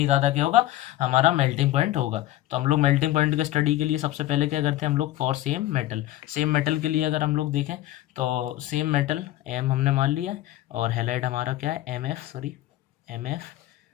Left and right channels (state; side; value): quieter; right; 15.0 dB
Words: ज़्यादा क्या होगा, हमारा मेल्टिंग पॉइंट होगा। तो हम लोग मेल्टिंग पॉइंट के स्टडी के लिए सबसे पहले क्या करते हैं हम लोग, फॉर सेम मेटल के लिए अगर हम लोग देखें तो सेम मेटल एम हमने मान लिया है, और हेलाइड हमारा क्या है, एम एफ,